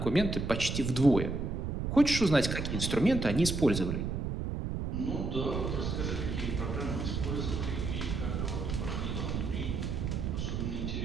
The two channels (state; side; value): noise; right; rumble, 2 dB below the sound